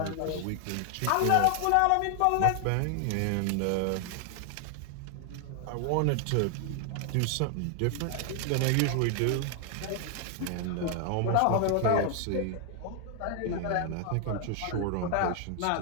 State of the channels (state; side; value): different; both; correlation 0.00